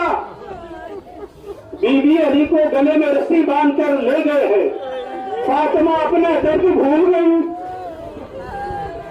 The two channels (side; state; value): both; identical; correlation 1.00